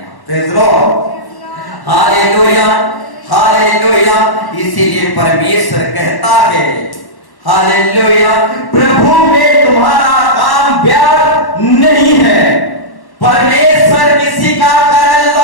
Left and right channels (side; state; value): right; late; 1.1 ms